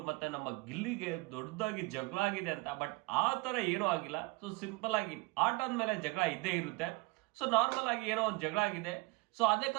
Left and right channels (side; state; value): left; quieter; 24.8 dB